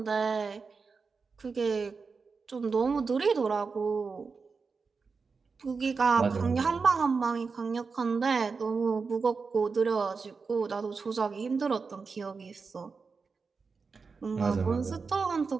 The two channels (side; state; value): left; quieter; 4.8 dB